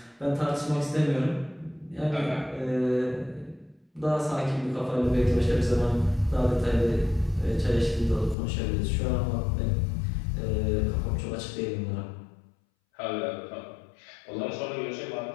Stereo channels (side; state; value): right; drops out; at 8.3 s